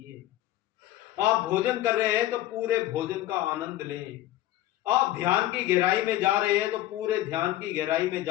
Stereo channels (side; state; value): right; quieter; 14.5 dB